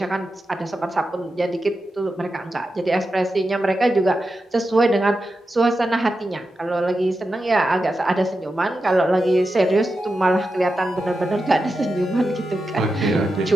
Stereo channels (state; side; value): normal; both; correlation 0.90